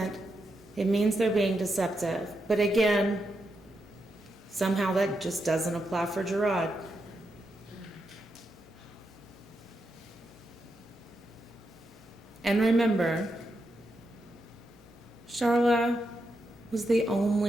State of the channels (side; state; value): both; normal; correlation 0.84